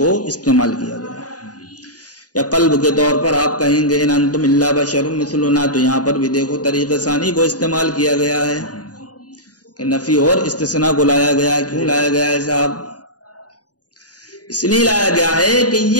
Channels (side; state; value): right; late; 0.68 ms